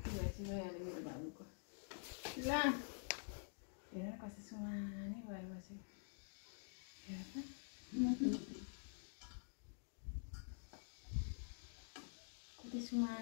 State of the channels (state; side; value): silent; right; digital silence